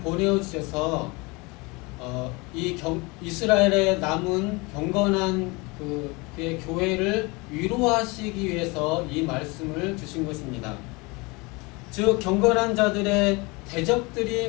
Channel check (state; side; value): quieter; right; 26.2 dB